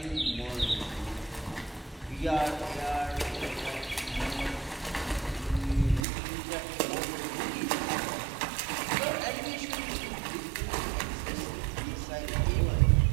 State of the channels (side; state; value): left; drops out; at 6.1 s